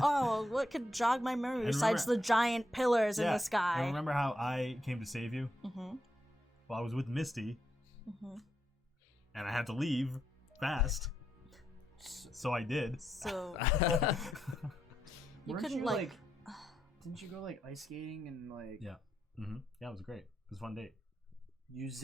Oh, what could jog my memory besides the giant pillars in the I sky? remember how I came to save you. Mm-hmm. Well, I was with Misty, Mm-hmm. and I had to leave fast. So I did. So you Weren't couldn't you, like. Didn't you go like ice skating and like Yeah. Yeah, it was great. It was a fun date. you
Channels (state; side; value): normal; both; correlation 0.82